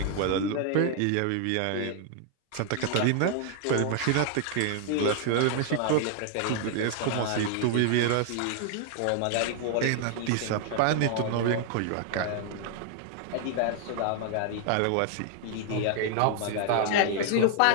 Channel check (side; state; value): both; different; correlation 0.00